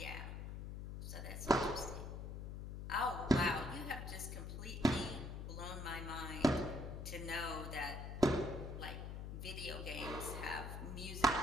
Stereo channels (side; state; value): left; noise; hum, 6 dB below the sound